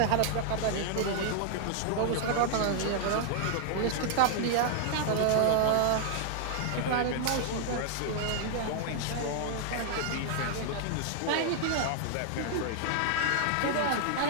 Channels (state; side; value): different; both; correlation 0.00